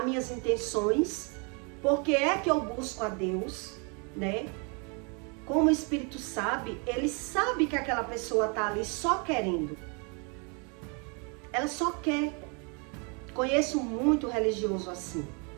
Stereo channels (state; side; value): quieter; left; 34.7 dB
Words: minhas intenções, porque é que eu busco a Deus, né? Como o Espírito sabe, ele sabe que aquela pessoa está ali só querendo. Ela só quer. Conheço muito religioso assim,